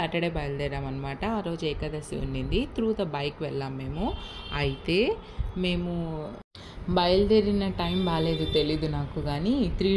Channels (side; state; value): both; identical; correlation 1.00